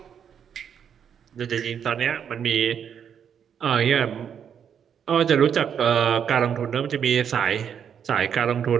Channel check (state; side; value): quieter; left; 8.1 dB